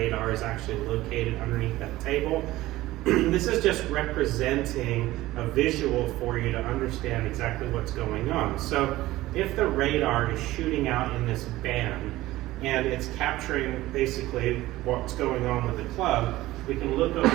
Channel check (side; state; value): left; quieter; 17.0 dB